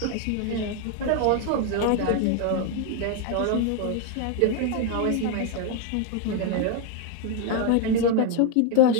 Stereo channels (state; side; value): different; both; correlation 0.01